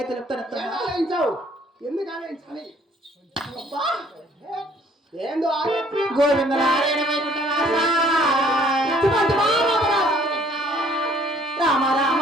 తెలుపుతాను ఆలోచించావు. ఎందుకు ఆలోచించాలి? ఏందో గోవింద రామ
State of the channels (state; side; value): normal; both; correlation 0.59